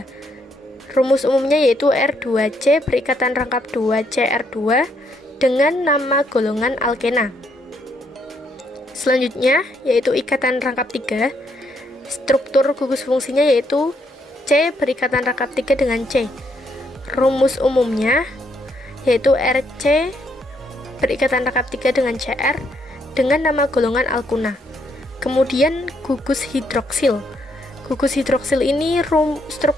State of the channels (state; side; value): normal; both; correlation 0.74